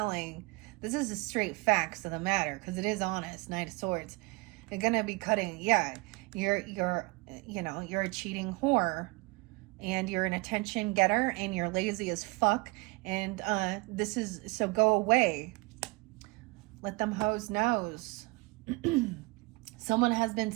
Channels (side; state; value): left; quieter; 26.3 dB